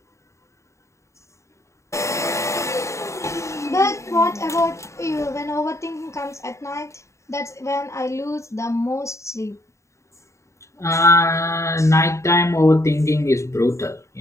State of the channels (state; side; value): late; right; 0.14 ms